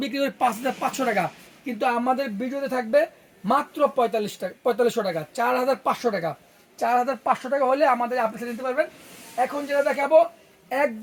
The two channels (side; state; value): both; identical; correlation 1.00